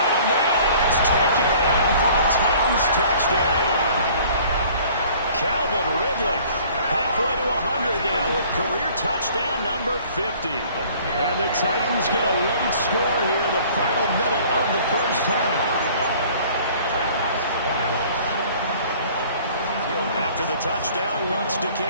a man, and it's taken for a Titans touchdown. Calvin Ridley. Halfway to 100 now with career touchdown number 50. And the Titans get a late score here in the final minute of the first half. After the touchdown, Lutz to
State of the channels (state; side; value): inverted; both; correlation -0.52